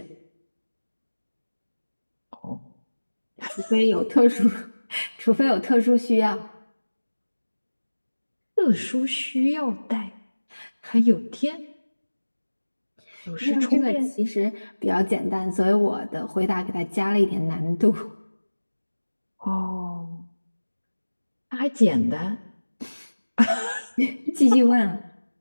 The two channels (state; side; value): inverted; both; correlation -1.00